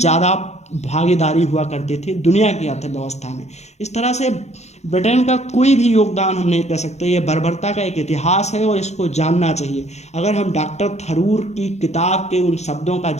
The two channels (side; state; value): right; late; 0.32 ms